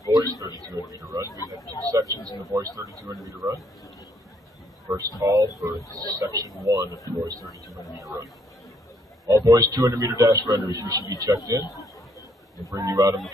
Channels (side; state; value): both; normal; correlation 0.69